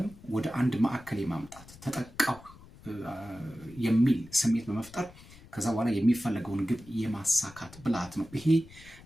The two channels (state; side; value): noise; left; rumble, 21 dB below the sound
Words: ወደ አንድ ማዕከል የማምጣት ተጠቃው የሚል ስሜት በመፍጠር ከዛ በኋላ የሚፈለገውን ግብ የማሳካት ብልሃት ነው። ይሄ